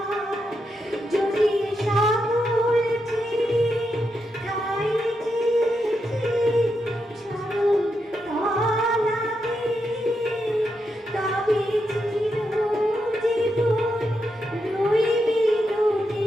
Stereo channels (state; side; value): normal; both; correlation 0.84